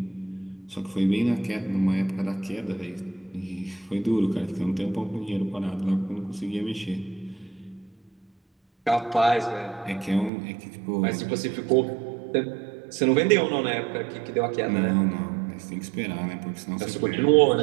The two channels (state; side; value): drops out; left; at 10.3 s